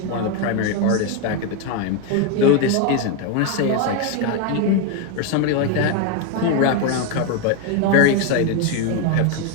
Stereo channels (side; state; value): both; different; correlation 0.01